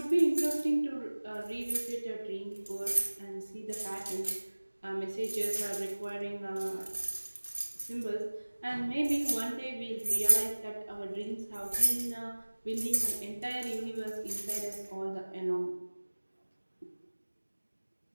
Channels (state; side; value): inverted; both; correlation -1.00